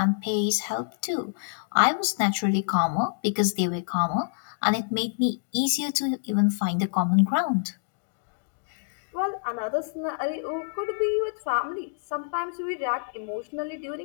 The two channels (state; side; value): silent; right; digital silence